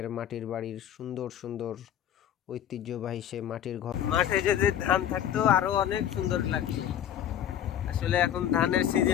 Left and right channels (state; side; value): quieter; right; 10.4 dB